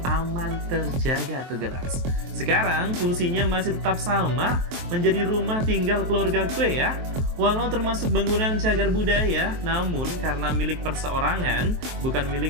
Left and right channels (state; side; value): late; left; 23 ms